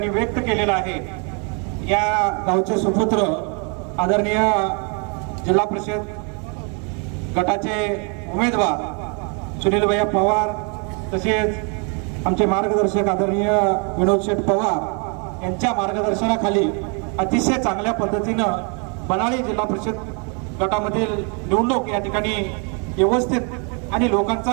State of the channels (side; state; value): left; quieter; 36.4 dB